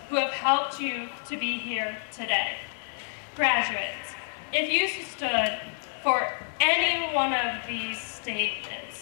who have helped you to be here today. Graduates, if you stood for any one of these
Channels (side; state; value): right; silent; digital silence